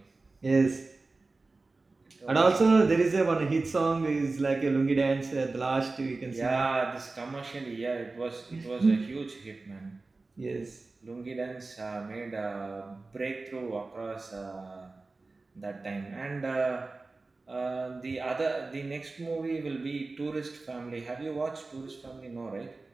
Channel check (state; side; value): quieter; left; 3.5 dB